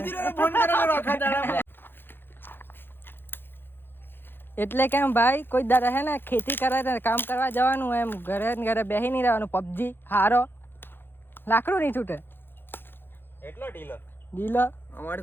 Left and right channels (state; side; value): late; right; 0.10 ms